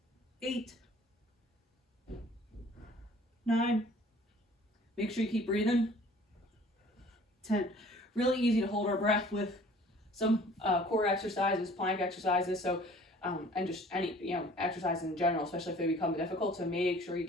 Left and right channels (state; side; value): normal; both; correlation 0.51